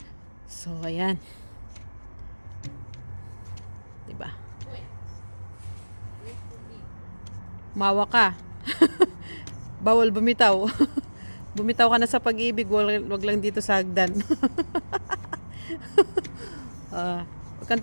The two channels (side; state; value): both; inverted; correlation -1.00